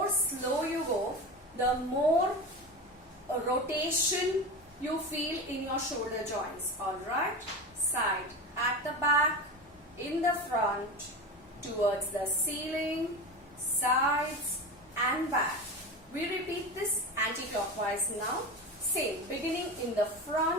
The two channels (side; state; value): both; normal; correlation 0.26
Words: slow you go, the more rotation you feel in your shoulder joints. Alright, side, at the back, in the front, towards the ceiling, sides and back. We repeat this anti-clockwise now. Same, beginning in the